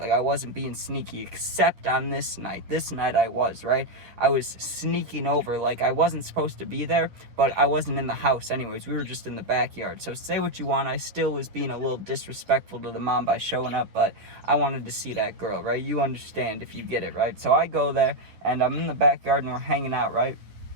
wasn't being sneaky, except on this night. This night I was, right? I was sneaking over. I wasn't supposed to be there, but I wasn't in the house anyways. We were just in the backyard. So say what you want, I still was being a little disrespectful to the mom by showing up, but I wanted to see that girl, right? You understand if you get it, right? So I go there and I'm in the backyard and we're hanging out, right?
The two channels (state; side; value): late; left; 10 ms